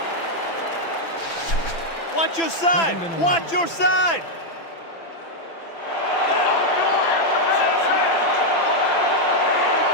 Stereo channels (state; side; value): late; right; 6.0 ms